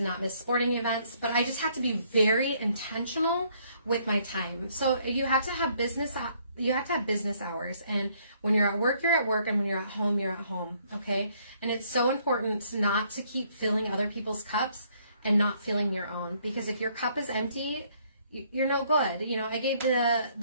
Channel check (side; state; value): both; inverted; correlation -0.66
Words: not miss sporting events. But I just have to be very intentional with my time. So you have to have business hours, and when you're at work, you're at work, and when you're at home, you're at home, okay? And it's so important not to keep filling other people's cups and not filling your own, because if your cup is empty, you're no good. I gave